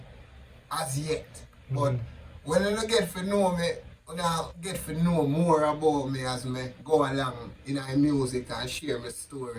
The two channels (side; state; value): both; identical; correlation 1.00